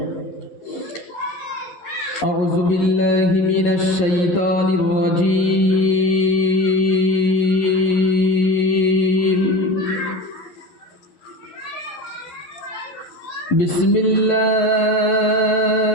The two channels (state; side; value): late; right; 11 ms